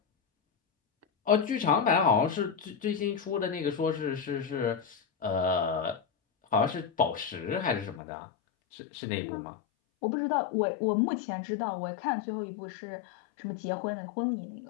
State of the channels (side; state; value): right; drops out; at 8.0 s